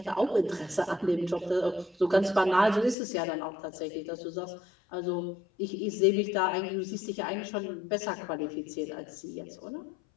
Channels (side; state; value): right; drops out; at 3.0 s